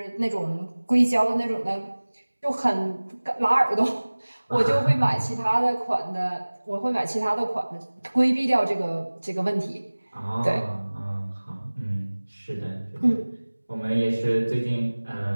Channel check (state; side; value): inverted; both; correlation -1.00